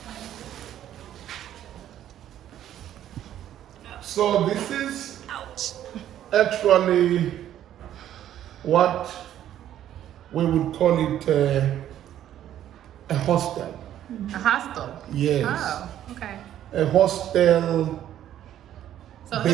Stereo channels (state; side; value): quieter; left; 11.5 dB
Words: so this is actually what we would call it a hostel. A hostel? Yes. Oh, okay. A hostel, So